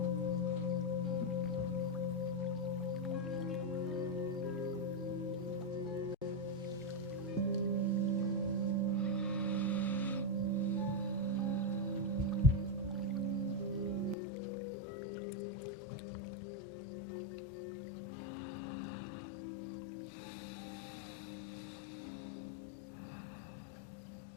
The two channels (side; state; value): right; drops out; at 14.2 s